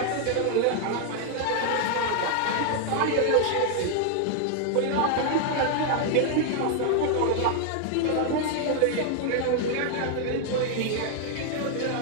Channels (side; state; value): both; different; correlation 0.00